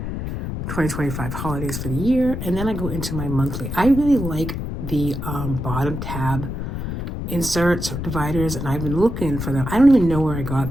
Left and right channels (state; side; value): noise; left; rumble, 5 dB below the sound